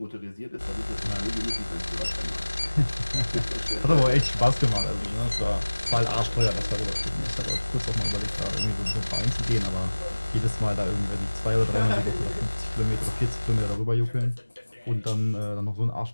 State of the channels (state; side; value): inverted; both; correlation -1.00